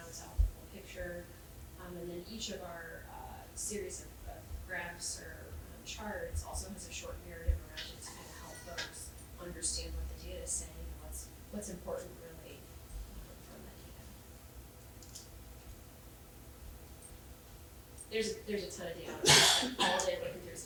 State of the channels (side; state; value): both; identical; correlation 1.00